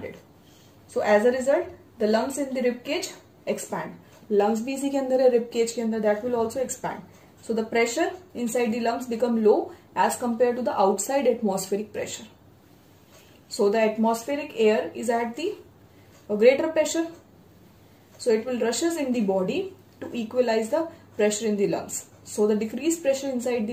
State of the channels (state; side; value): identical; both; correlation 1.00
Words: So as a result, the lungs in the rib cage expand. Lungs भी इसी के अंदर है, rib cage के अंदर, that will also expand. So the pressure inside the lungs become low as compared to the outside atmospheric pressure. So the atmospheric air is at the greater pressure. So it will rushes in the body to equalize the pressure in the lungs. So the decreased pressure inside the